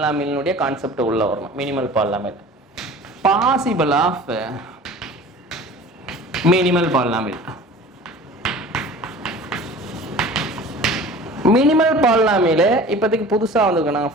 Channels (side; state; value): both; normal; correlation 0.42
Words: கான்செப்ட் உள்ள வரணும். Minimal polynomial, possible of minimal polynomial. Minimal polynomial இப்போதைக்கு புதுசாக வந்திருக்கு,